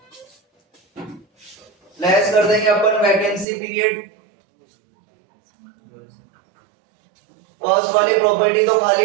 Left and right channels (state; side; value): drops out; left; at 3.5 s